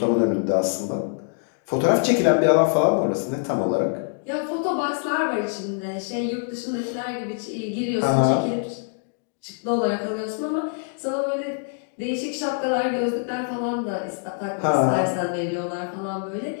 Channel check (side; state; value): right; silent; 62 dB below the other